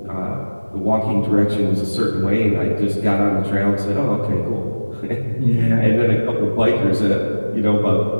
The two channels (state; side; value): inverted; both; correlation -1.00